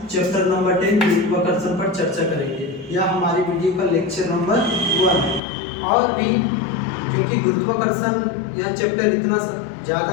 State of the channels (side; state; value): right; drops out; at 5.4 s